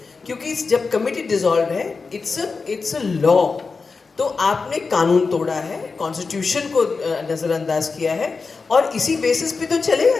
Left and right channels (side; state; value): right; quieter; 4.5 dB